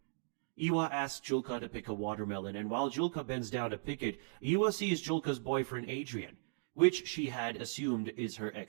Iwa asks Julka to pick a watermelon, and while Julka bends down to pick it, Iwa sees Julka's boyfriend Adrian, which she had assumed is her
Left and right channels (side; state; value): left; silent; digital silence